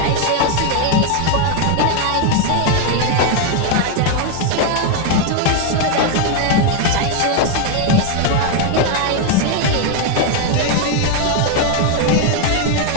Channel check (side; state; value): both; different; correlation 0.01